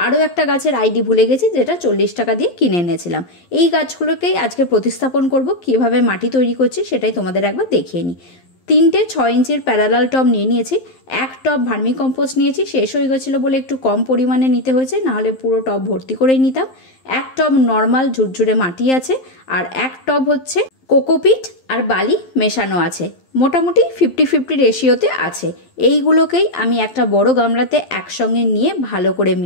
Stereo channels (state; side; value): late; right; 11 ms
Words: আরও একটা গাছের আইডি ভুলে গেছি, যেটা 40 টাকা দিয়ে কিনে এনেছিলাম। এই গাছগুলোকেই আজকে প্রতিস্থাপন করব। কীভাবে মাটি তৈরি করছি সেটাই তোমাদের একবার দেখিয়ে নিই। 3টে 6 ইঞ্চির প্যারালাল টব নিয়ে নিয়েছি। এক টব ভার্মি কম্পোস্ট নিয়েছি, শেষ হয়ে গেছিলো বলে একটু কম পরিমাণে নিতে হয়েছে, নাহলে পুরো টব ভর্তি করেই নিতাম। এক টব নর্মাল ঝুরঝুরে মাটি আছে, আর এক টব হচ্ছে কোকোপিট আর বালি মেশানো আছে। মোটামুটি 50-50 রেশিওতে আছে। এইগুলোকেই আমি একটা বড় গামলাতে একসঙ্গে নিয়ে ভালো করে